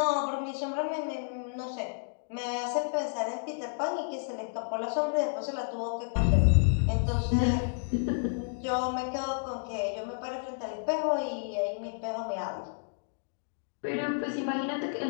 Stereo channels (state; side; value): silent; right; digital silence